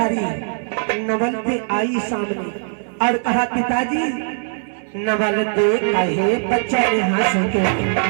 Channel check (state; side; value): silent; left; 61 dB below the other